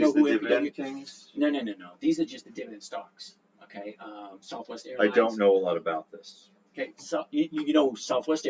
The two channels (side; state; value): both; identical; correlation 1.00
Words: who MPW things? No. These are just the dividend stocks. Okay. Southwest Airlines. I don't know a lot about this. Okay. So you know Southwest